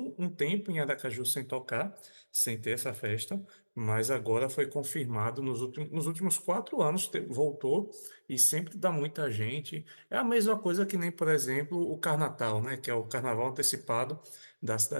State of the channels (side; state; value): both; inverted; correlation -1.00